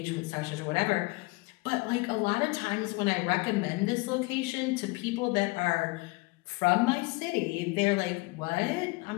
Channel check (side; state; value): right; quieter; 25.1 dB